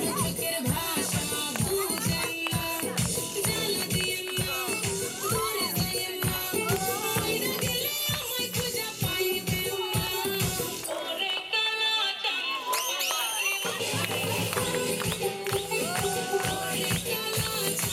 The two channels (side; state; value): both; identical; correlation 1.00